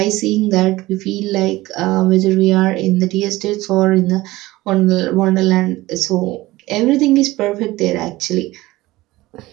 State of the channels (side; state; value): left; quieter; 18.7 dB